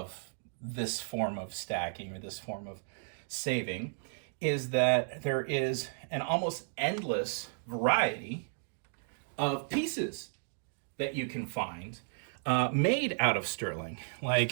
this form of stacking or this form of saving is that there is an almost endless variety of pieces that you can find made out of sterling.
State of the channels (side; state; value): left; silent; digital silence